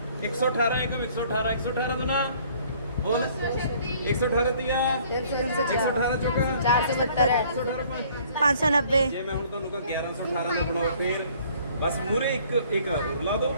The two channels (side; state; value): both; inverted; correlation -0.57